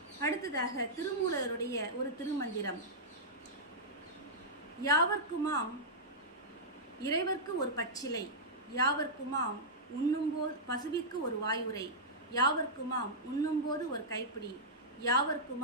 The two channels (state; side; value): normal; both; correlation -0.11